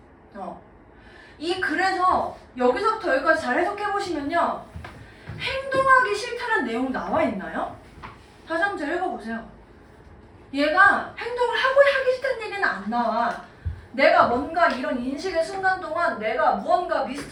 그래서 여기서부터 여기까지 잘 해석해보시면요. 행동하기 싫다는 내용 나와 있나요? 다시 한번 잘 읽어보세요. 얘가 행동을 하기 싫다는 얘기는 안 나와. 내가 뭔가 이런 인식의 순간 동안 내가 무언가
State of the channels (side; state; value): both; identical; correlation 1.00